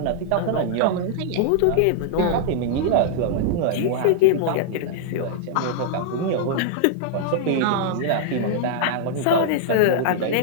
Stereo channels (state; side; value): different; both; correlation -0.01